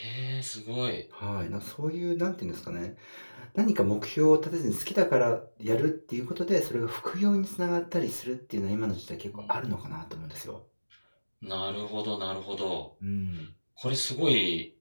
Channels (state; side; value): inverted; both; correlation -1.00